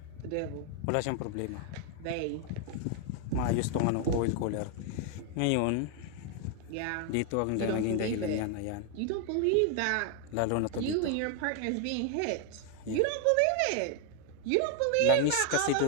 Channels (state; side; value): different; both; correlation 0.00